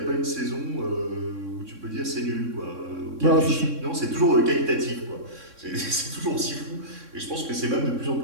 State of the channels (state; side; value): late; left; 3.6 ms